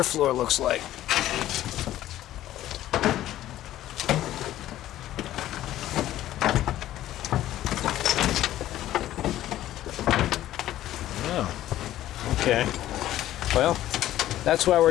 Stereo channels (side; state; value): right; quieter; 13.6 dB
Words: floor looks like. Oh, okay. Well, that's why we're